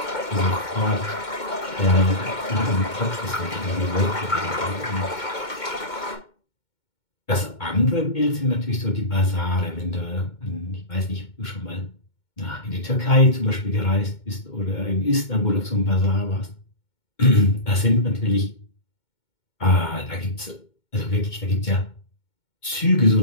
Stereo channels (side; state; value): right; late; 2.2 ms